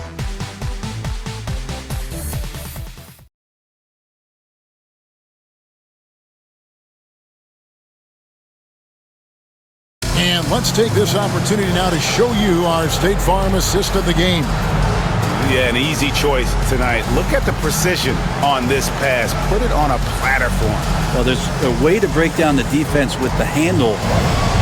And let's take this opportunity now to show you our State Farm assist of the game. Yeah, an easy choice tonight. Look at the precision on this pass. Put it on a platter for him. Well, there's a way to break down the defense with the handle,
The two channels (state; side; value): identical; both; correlation 1.00